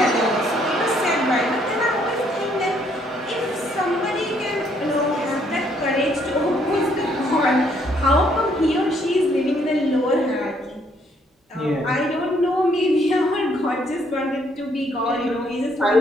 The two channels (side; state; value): both; normal; correlation 0.68